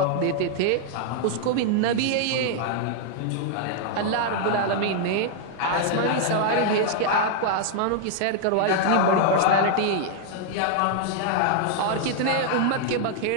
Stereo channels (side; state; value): both; different; correlation 0.00